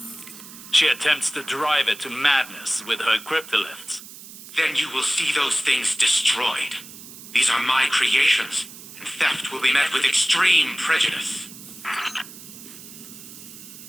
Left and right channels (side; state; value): right; noise; hiss, 16 dB below the sound